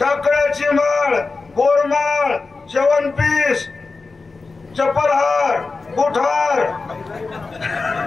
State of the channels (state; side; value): quieter; right; 4.0 dB